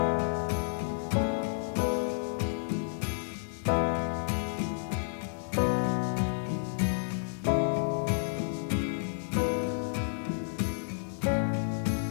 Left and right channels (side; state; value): right; silent; digital silence